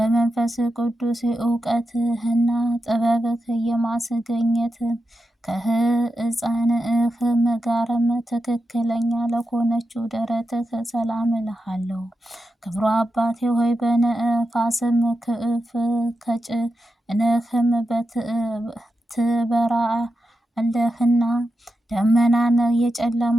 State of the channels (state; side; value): normal; both; correlation 0.89